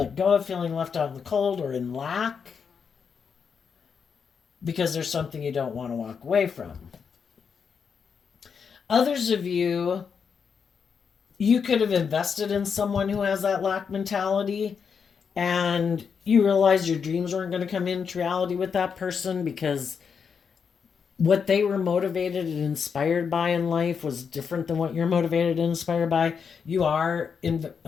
go of feeling left out in the cold or in lack because there's something you don't want to walk away from. Others of you, you could have invested in someone who has that lack mentality, and you realize your dreams weren't going to come into reality with that person because what they were motivated and inspired by in life was different than what you're motivated and inspired by. You are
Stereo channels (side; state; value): right; quieter; 6.3 dB